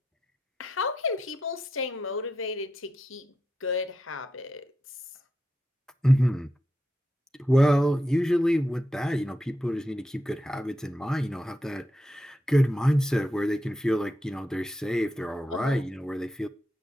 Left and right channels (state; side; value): normal; both; correlation 0.86